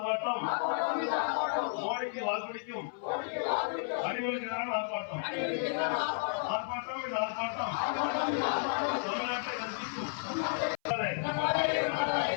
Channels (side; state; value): right; silent; 56 dB below the other